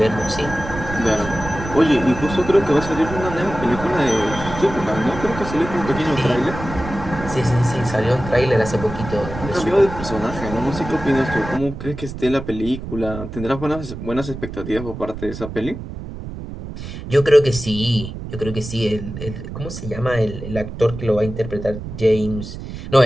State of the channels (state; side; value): noise; right; rumble, 9 dB below the sound